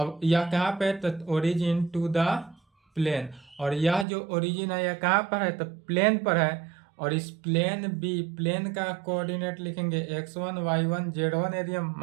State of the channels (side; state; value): left; drops out; at 4.0 s